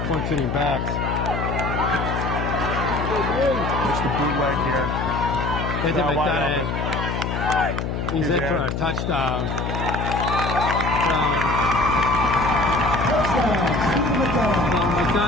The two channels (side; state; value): left; noise; hum, 3 dB below the sound